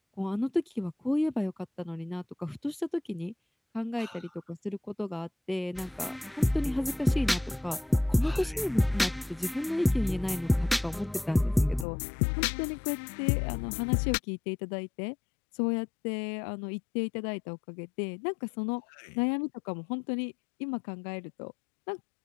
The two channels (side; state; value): right; drops out; at 11.9 s